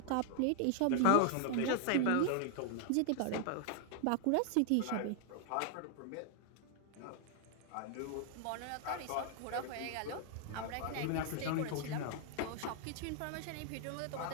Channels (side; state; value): both; different; correlation 0.00